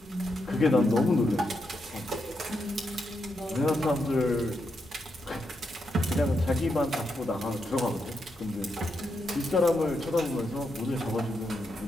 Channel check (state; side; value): normal; both; correlation 0.83